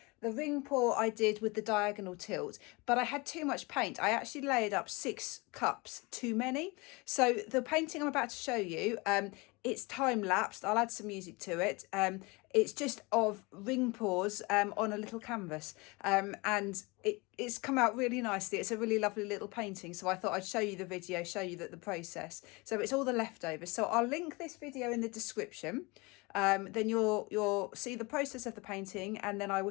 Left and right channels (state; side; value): quieter; right; 26.0 dB